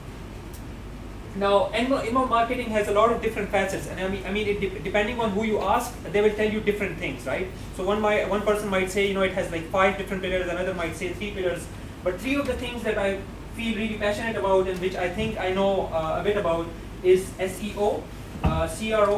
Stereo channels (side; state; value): both; identical; correlation 1.00